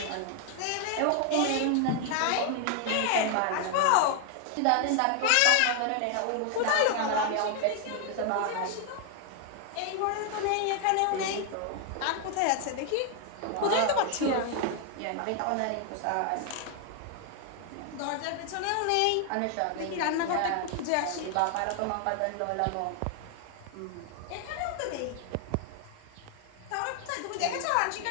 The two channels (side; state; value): both; different; correlation 0.00